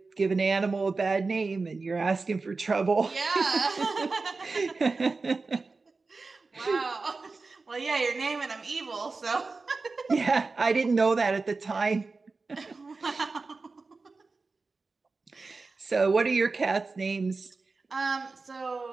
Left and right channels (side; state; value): left; quieter; 4.0 dB